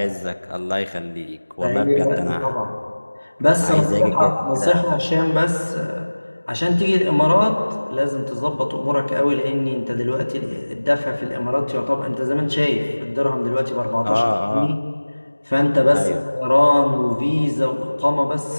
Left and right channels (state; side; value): inverted; both; correlation -1.00